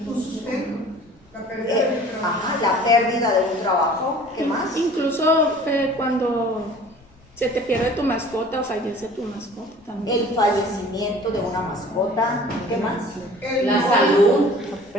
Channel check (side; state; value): both; normal; correlation 0.47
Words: Tu sustento. La pérdida de un trabajo. Ajá, la pérdida de un trabajo. ¿Qué más? Incluso cuando se te pierde tu mascota o fallece tu mascota también. El fallecimiento de una mascota. ¿Qué más? La salud. La